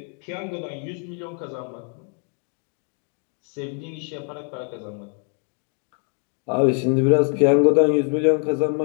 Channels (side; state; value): right; quieter; 38.4 dB